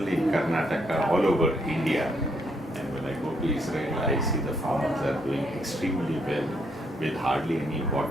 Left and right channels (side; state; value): both; normal; correlation 0.73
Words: in Karnataka, all over India, and when I go to Israel, I see the farmers are doing extremely well with hardly any